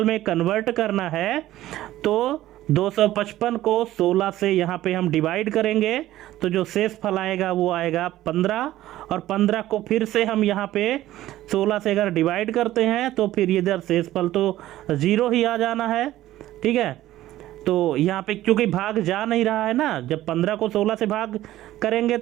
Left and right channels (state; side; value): quieter; left; 14.6 dB